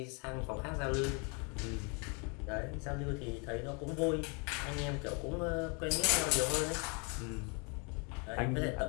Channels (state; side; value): quieter; right; 33.9 dB